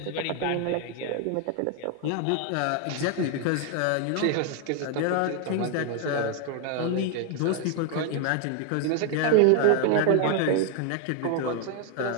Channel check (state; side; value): different; both; correlation 0.01